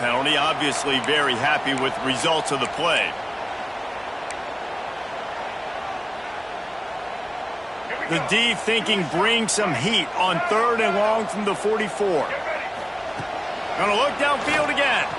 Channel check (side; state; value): both; identical; correlation 1.00